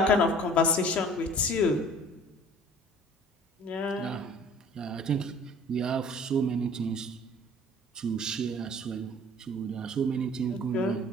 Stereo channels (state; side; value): normal; both; correlation 0.49